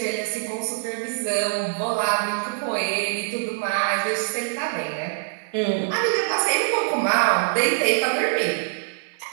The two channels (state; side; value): silent; left; digital silence